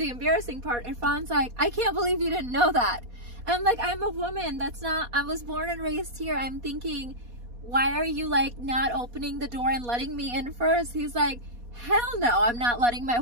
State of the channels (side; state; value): left; late; 4.2 ms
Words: embarrassing part. Irfan's like, I can't believe you didn't know that. And I'm like, I'm a woman. That's not, I was born and raised here. I'm thinking, why are you like not opening the door and letting me in first? He's like, hell no, I'm not letting my